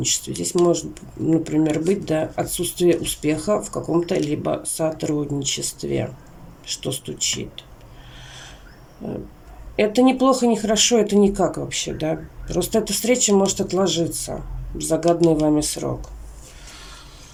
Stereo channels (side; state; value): both; identical; correlation 1.00